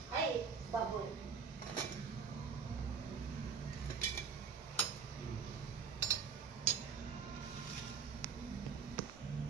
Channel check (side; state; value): left; quieter; 6.1 dB